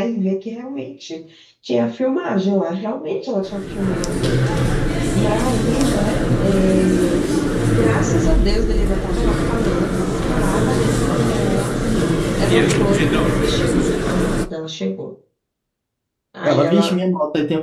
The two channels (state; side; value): identical; both; correlation 1.00